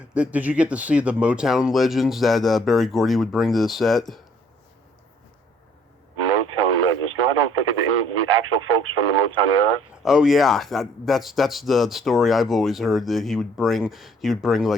Did you get to see the Motown Legends that Barry Gordy would bring to the set? Motown Legends. No, I don't think of the actual folks from the Motown era. Oh yeah, that's the story I've always heard, that he would bring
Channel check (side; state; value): both; normal; correlation 0.61